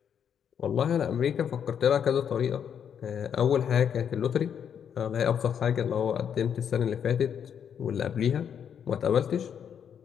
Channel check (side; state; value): right; quieter; 8.2 dB